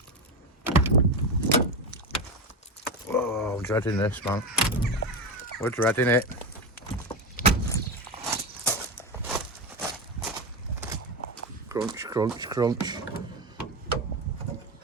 Oh, I'm dreading this, man. We're dreading it. Crunch, crunch, crunch.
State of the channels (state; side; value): normal; both; correlation 0.17